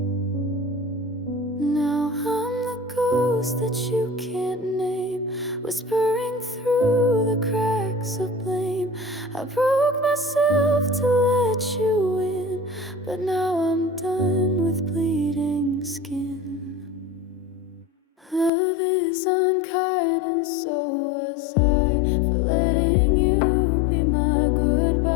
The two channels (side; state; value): right; drops out; at 18.5 s